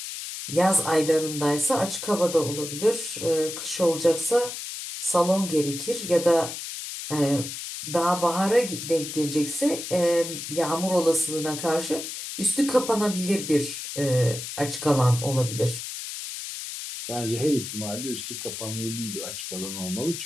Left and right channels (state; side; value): noise; left; hiss, 8 dB below the sound